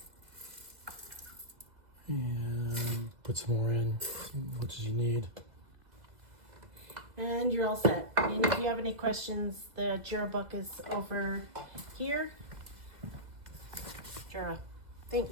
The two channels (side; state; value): left; late; 2.0 ms